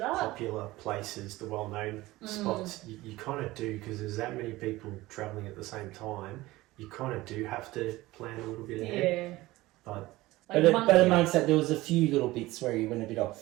Popular places, the well-known spots, you kind of do, because there's that many people travelling at the same time. You kind of do have to plan a little bit ahead. But amongst that, there was a few little bits where you went a bit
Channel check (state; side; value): quieter; left; 18.6 dB